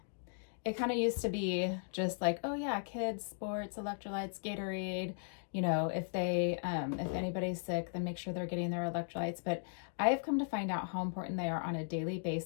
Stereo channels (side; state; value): right; silent; digital silence